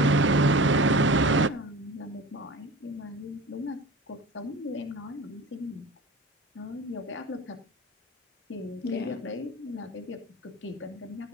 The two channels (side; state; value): both; normal; correlation 0.36